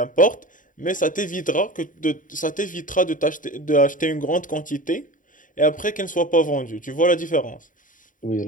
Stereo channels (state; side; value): late; right; 0.38 ms